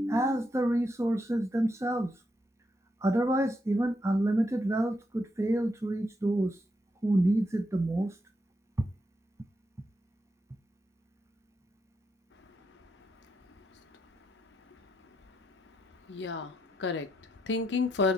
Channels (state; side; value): normal; both; correlation 0.81